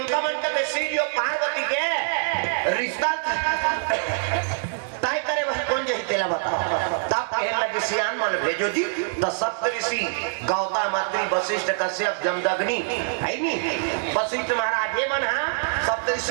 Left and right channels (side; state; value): left; silent; digital silence